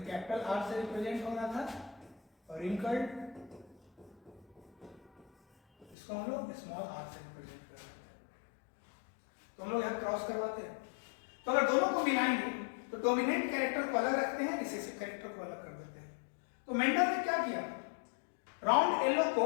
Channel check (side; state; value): right; drops out; at 6.0 s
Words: कैपिटल आर से रिप्रेजेंट हो रहा था, और रिंकल्ड, इसको हम लोग स्मॉल आर से रिप्रेजेंट कर रहे हैं। तो हम लोग यहां क्रॉस करवाते हैं। तो अगर दोनों को मिलाएंगे तो डोमिनेंट कैरेक्टर को अलग रखते हैं, रिसेसिव कैरेक्टर को अलग कर देते हैं। तो मेंडल ने क्या किया, राउंड येलो को